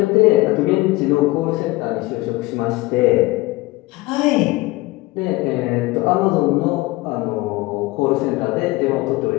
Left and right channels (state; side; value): quieter; right; 20.6 dB